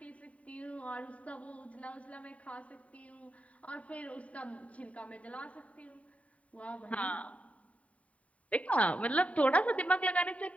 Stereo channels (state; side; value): late; right; 0.067 ms